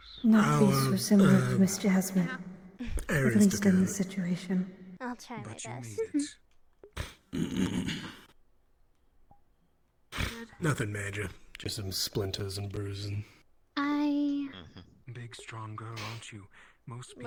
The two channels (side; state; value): both; identical; correlation 1.00